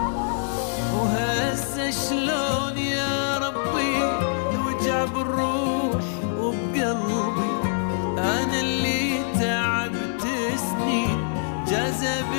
وهسه شلون يا ربي الوجع بالروح وبقلبي، أنا اللي تعبت سنين جذب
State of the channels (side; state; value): right; silent; digital silence